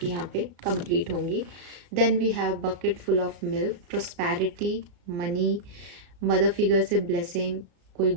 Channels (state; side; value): late; left; 34 ms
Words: यहाँ पे कंप्लीट होंगी। Then we have bucket full of milk, prosperity, money, mother figure से ब्लेसिंग, कोई